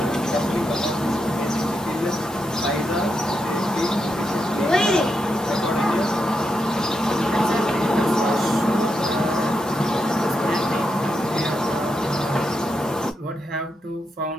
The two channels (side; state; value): both; normal; correlation 0.84